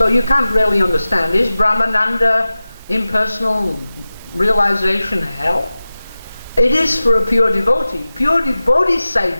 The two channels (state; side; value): inverted; both; correlation -0.96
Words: you can't really understand, is Brahmananda impersonal realization hell? It is for a pure devotee. Pure devotees say